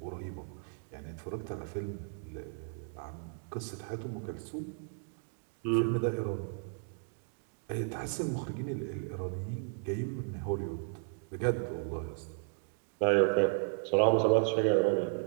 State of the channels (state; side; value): silent; left; 55 dB below the other